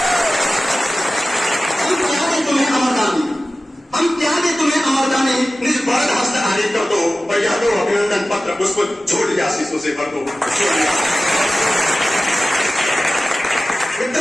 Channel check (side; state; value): both; normal; correlation 0.96